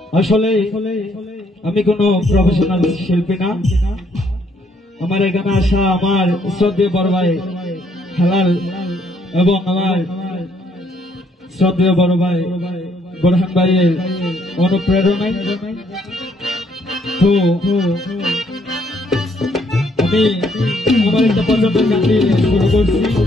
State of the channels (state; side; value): normal; both; correlation 0.69